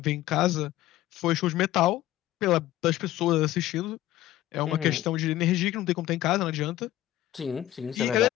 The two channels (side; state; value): right; quieter; 14.3 dB